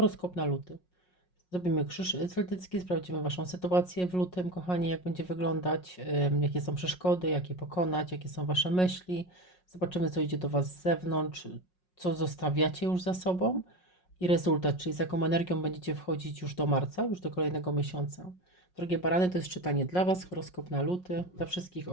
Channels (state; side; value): late; right; 5.5 ms